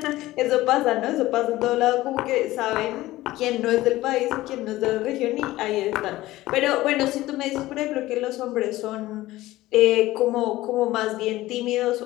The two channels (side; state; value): right; quieter; 17.0 dB